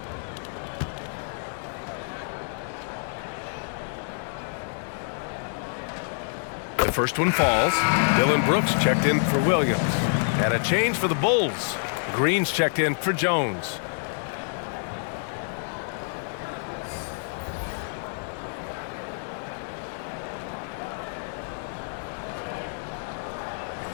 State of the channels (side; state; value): right; silent; 59 dB below the other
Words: The first one falls. Dylan Brooks checked in for Williams. And a change for the Bulls. Green's checked in for Jones.